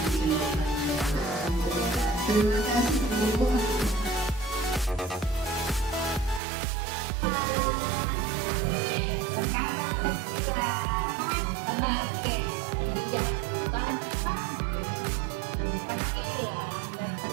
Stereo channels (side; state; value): left; drops out; at 6.4 s